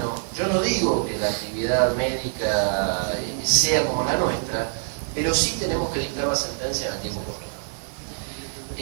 yo no digo que la actividad médica sea como la nuestra, pero sí tenemos que dictar la sentencia en el tiempo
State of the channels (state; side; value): silent; left; 62 dB below the other